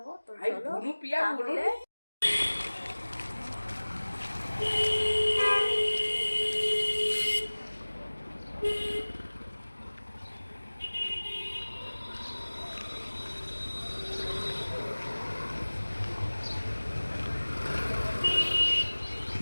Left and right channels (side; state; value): both; inverted; correlation -1.00